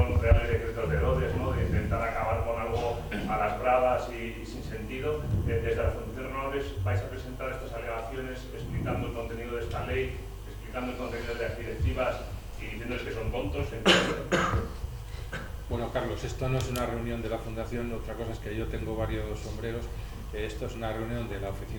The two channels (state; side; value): identical; both; correlation 1.00